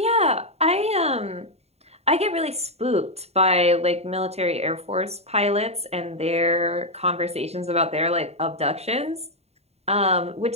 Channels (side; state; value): left; late; 0.30 ms